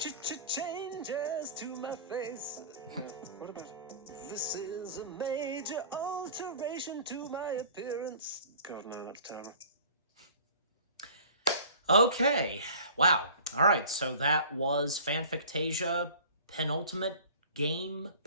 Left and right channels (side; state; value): both; inverted; correlation -0.44